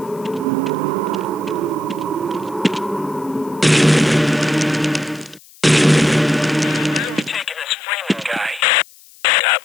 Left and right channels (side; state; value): left; noise; hiss, 24 dB below the sound